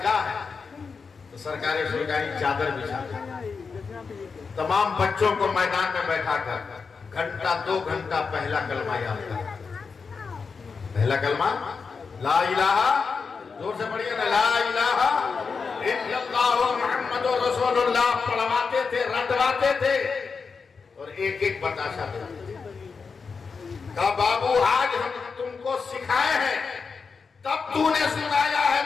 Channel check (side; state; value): right; quieter; 5.2 dB